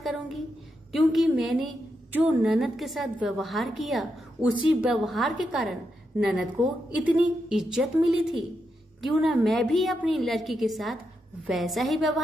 करूंगी, क्योंकि मैंने जो ननद के साथ व्यवहार किया उसी व्यवहार के कारण ननद को इतनी इज्जत मिली थी। क्यों ना मैं भी अपनी लड़की के साथ वैसा ही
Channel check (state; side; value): normal; both; correlation 0.84